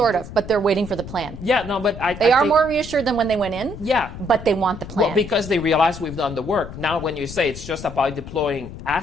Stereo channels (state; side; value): noise; left; rumble, 12 dB below the sound